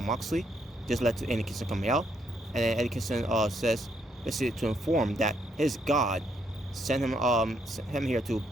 Moxley. This led to Eddie Kingston coming out, and then Eddie Kingston says basically to inform that his God sent him here to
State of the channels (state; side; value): normal; both; correlation 0.74